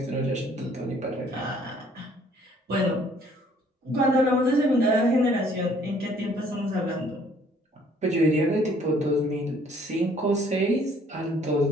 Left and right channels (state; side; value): normal; both; correlation 0.60